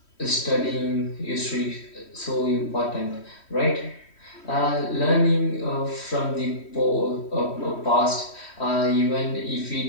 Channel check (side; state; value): right; late; 3.1 ms